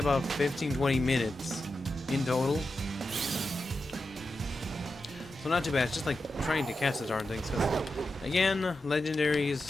15-20 minutes in total. So not too bad. It's just like trying to catch the darn things. Cause, again,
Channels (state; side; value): normal; both; correlation 0.90